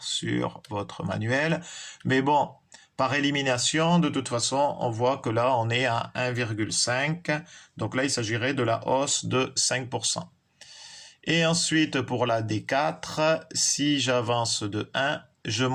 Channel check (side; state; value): both; identical; correlation 1.00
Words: sur votre manuel. Mais bon, par élimination, de toute façon, on voit que là, on est à 1,5. Donc là, il s'agirait de la hausse de 5%. Et ensuite, pour la D4, si j'avance de 1, je